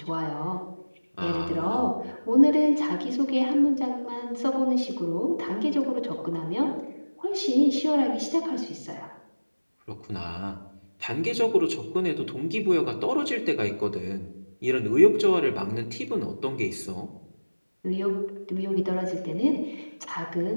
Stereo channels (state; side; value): inverted; both; correlation -1.00